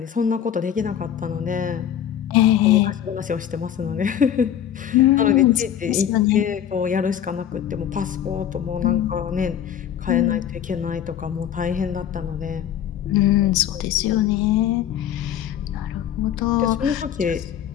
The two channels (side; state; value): right; quieter; 9.9 dB